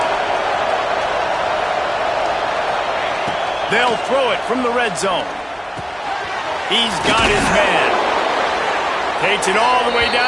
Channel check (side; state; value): both; identical; correlation 1.00